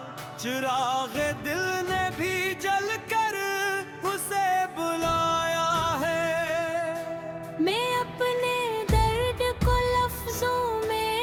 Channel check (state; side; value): identical; both; correlation 1.00